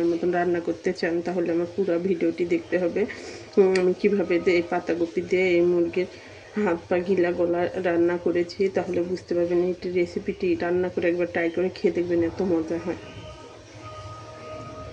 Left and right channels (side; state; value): both; identical; correlation 1.00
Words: মতন রান্না করতে চান তাহলে আমার পুরো ভিডিওটি দেখতে হবে। আমি কীভাবে এই পাতাকপি দিয়ে এই মুরগির হাত পা গিলা গলা রান্না করেছি তাহলে বুঝতে পারবেন এই রেসিপিটি রান্না করে একবার ট্রাই করে খেয়ে দেখবেন, এত মজা হয়।